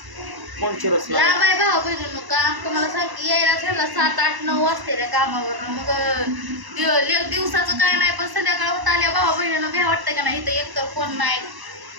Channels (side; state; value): left; late; 1.0 ms